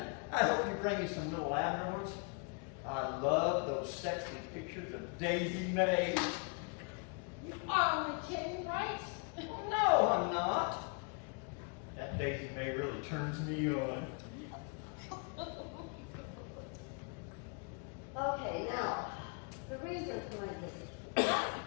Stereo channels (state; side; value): quieter; right; 37.0 dB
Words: I hope you bring me some Little Abner ones. I love those sexy pictures of Daisy Mae. You are only kidding, right? No, I'm not. That Daisy Mae really turns me on. Okay, now, the reason for my visit.